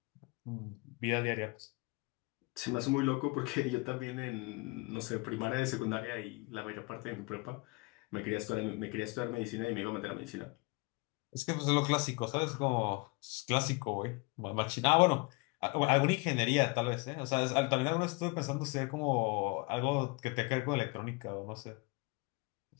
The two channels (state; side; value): quieter; right; 27.6 dB